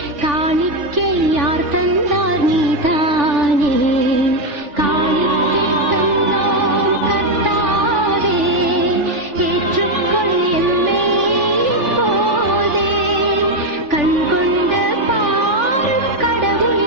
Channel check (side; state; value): left; late; 3.4 ms